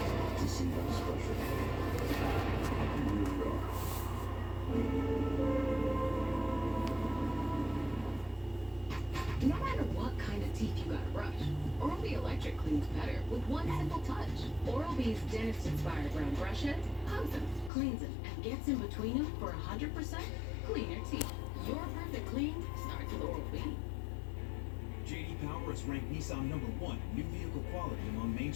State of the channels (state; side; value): drops out; right; at 17.7 s